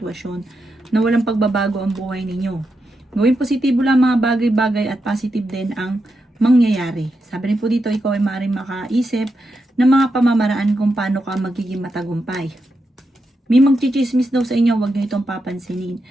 na walang pagbabago ang buhay ninyo. Gawin positibo lang mga bagay-bagay at positive din ang mangyayari. Sabi rin po dito, ikaw ay maaaring makaisip ng mga pamamaraan kung paano ka magiging matagumpay. May magchichismis daw sa inyo, huwag nyo itong papansinin.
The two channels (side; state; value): both; normal; correlation 0.86